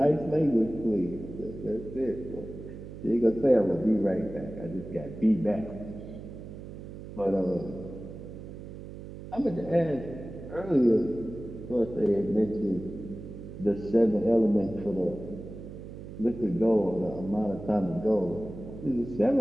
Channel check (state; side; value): noise; right; hum, 12 dB below the sound